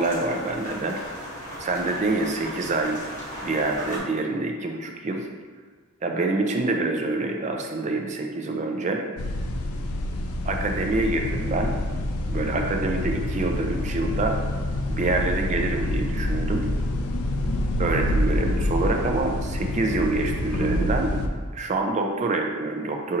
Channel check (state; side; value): normal; both; correlation 0.49